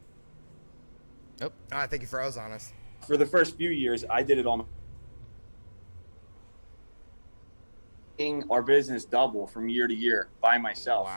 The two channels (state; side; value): inverted; both; correlation -1.00